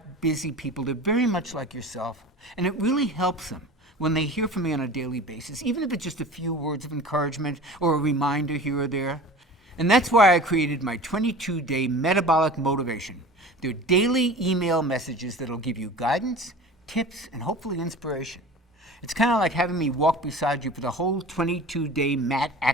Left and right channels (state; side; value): normal; both; correlation 0.38